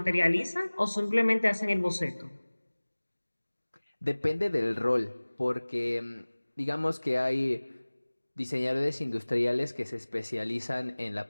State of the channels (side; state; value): both; inverted; correlation -1.00